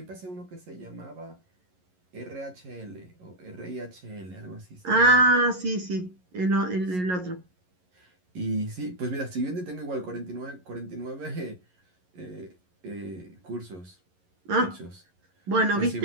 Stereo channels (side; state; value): left; late; 11 ms